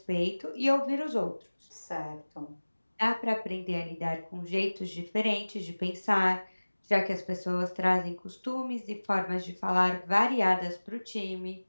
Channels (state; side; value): inverted; both; correlation -1.00